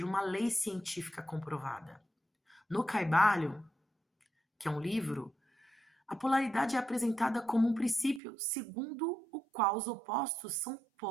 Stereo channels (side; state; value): left; drops out; at 8.2 s